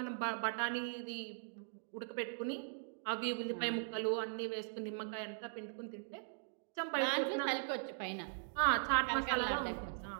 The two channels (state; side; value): silent; left; digital silence